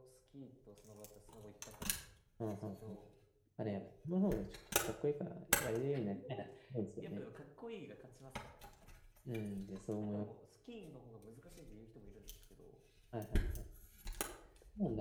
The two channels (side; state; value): both; identical; correlation 1.00